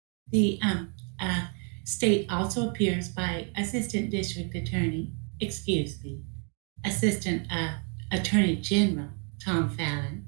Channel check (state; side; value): quieter; left; 39.1 dB